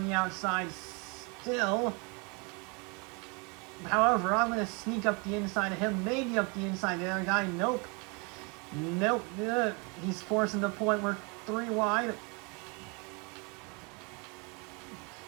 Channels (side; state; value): left; quieter; 31.6 dB